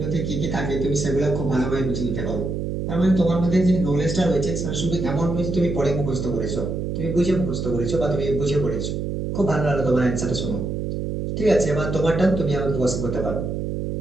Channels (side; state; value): right; noise; hum, 3 dB below the sound